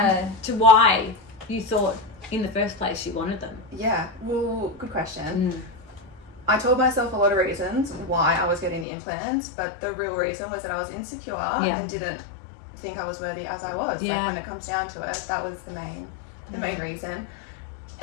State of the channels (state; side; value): drops out; right; at 8.8 s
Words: to why you thought in the first place you wanted them. Yeah, well, good question. I told myself a lot of reasons why I was getting the implants, but the real reason was that I was insecure and didn't think I was worthy as I was. Like when it comes down to it, that was the main reason.